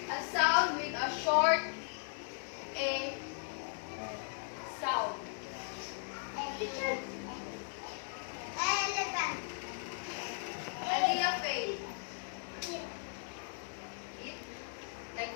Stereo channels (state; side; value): silent; right; digital silence